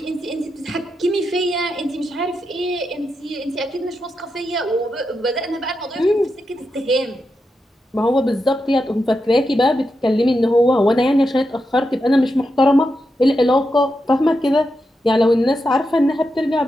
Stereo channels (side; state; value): both; normal; correlation 0.87